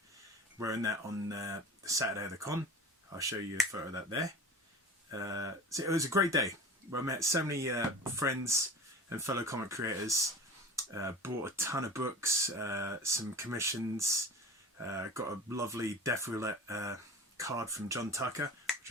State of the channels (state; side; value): normal; both; correlation 0.35